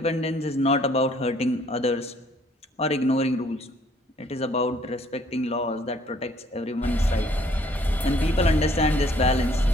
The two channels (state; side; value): normal; both; correlation 0.61